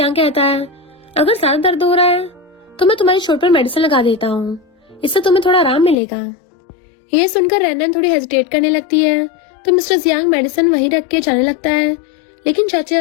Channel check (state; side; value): drops out; right; at 6.0 s